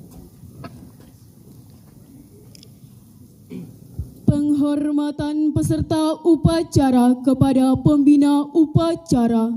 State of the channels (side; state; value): both; identical; correlation 1.00